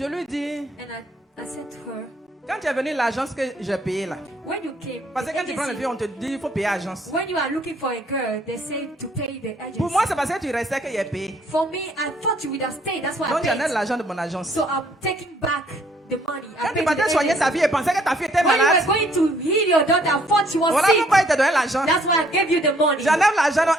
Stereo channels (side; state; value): both; normal; correlation 0.63